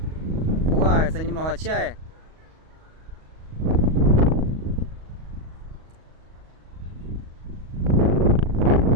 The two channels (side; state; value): left; late; 38 ms